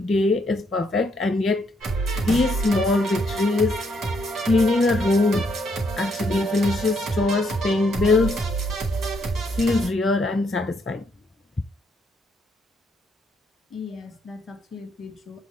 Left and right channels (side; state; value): both; normal; correlation 0.73